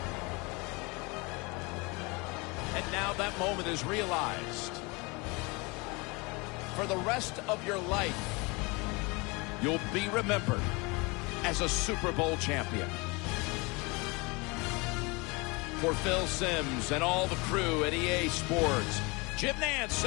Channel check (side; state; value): right; quieter; 27.1 dB